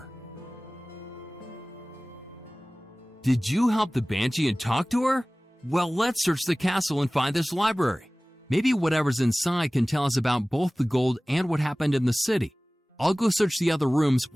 Did you help the Banshee and talk to her? Well, let's search the castle and find this library. Maybe whatever's inside can tell us about both the gold and what happened in the city. I'll go search the other rooms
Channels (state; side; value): normal; both; correlation 0.98